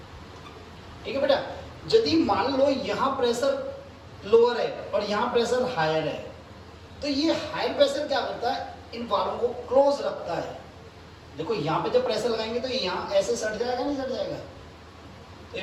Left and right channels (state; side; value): identical; both; correlation 1.00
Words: ठीक है बेटा, यदि मान लो यहाँ प्रेशर लोअर है और यहाँ प्रेशर हायर है, तो ये हायर प्रेशर क्या करता है? इन वाल्वों को क्लोज रखता है। देखो यहाँ पे जब प्रेशर लगाएंगे तो यहाँ ऐसे सट जाएगा, नहीं सट जाएगा? तो